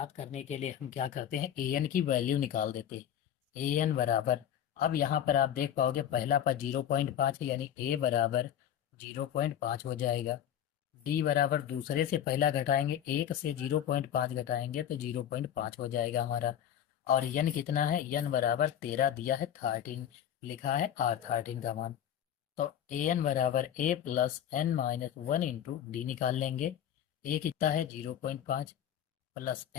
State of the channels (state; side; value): quieter; right; 10.1 dB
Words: करने के लिए हम क्या करते हैं, an की वैल्यू निकाल देते हैं। an बराबर, अब यहाँ पर आप देख पाओगे पहला पद 0.5 है, यानी a बराबर 0.5 हो जाएगा। डी बराबर दूसरे से पहला घटाएंगे, 1 से 0.5 घटाएंगे तो 0.5 हो जाएगा हमारा। और यन कितना है, यन बराबर 13 दिया है, 13 लिखा है R13 का मान। तो ए एन बराबर A plus N minus 1 into D निकाल लेंगे। ए कितना है 0.5 प्लस